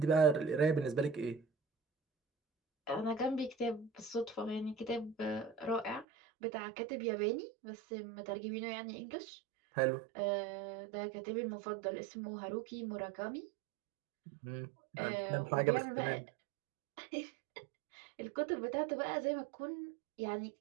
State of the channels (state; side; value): drops out; left; at 6.1 s